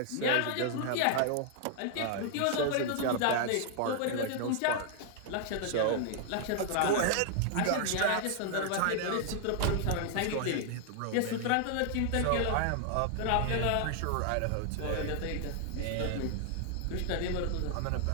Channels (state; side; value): different; both; correlation 0.00